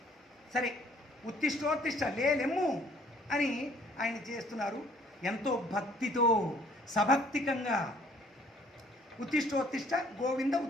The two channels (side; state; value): both; normal; correlation 0.59